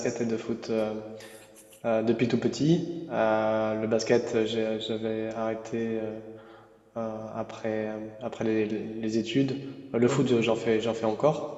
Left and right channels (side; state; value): both; identical; correlation 1.00